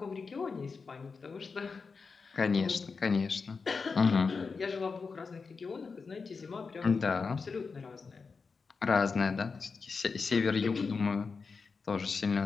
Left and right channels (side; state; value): right; quieter; 4.8 dB